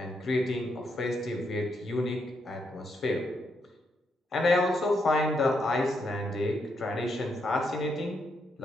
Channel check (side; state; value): both; normal; correlation 0.79